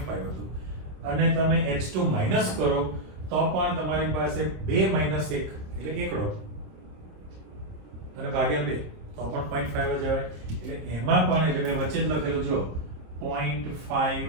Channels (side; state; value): left; late; 26 ms